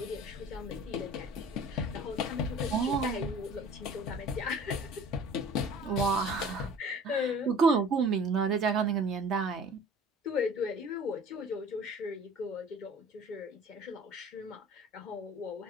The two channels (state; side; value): normal; both; correlation 0.46